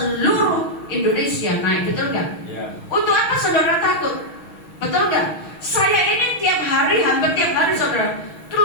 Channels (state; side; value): late; right; 6.3 ms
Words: Indonesia naik, betul gak? Untuk apa saudara takut? Betul gak? Saya ini tiap hari, hampir tiap hari saudara